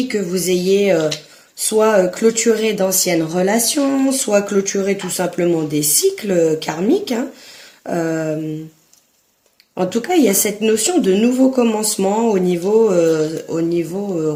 que vous ayez soit clôturé d'anciennes relations, soit clôturé tout simplement des cycles karmiques. Hein. En tout cas, il y a cette notion de nouveau commencement au niveau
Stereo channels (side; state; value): both; identical; correlation 1.00